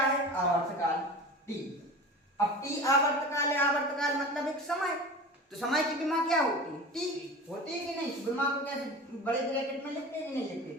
है, आवर्तकाल टी। अब टी आवर्तकाल है, आवर्तकाल मतलब एक समय, तो समय की विमा क्या होती है? टी होती है कि नहीं? विमा को कैसे बड़े ब्रैकेट में लिखते हैं कि नहीं लिखते?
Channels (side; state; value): both; normal; correlation 0.34